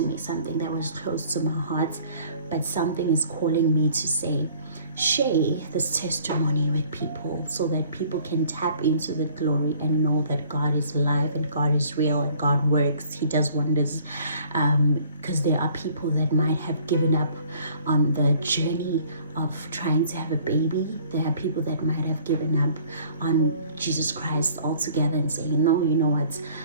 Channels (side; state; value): both; inverted; correlation -0.55